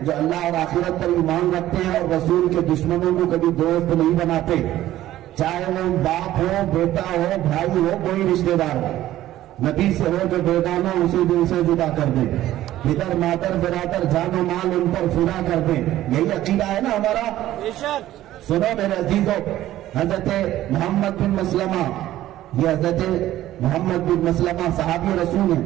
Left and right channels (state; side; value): quieter; left; 14.0 dB